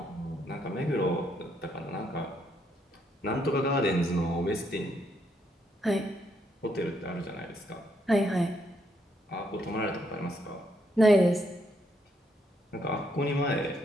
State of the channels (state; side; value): normal; both; correlation 0.74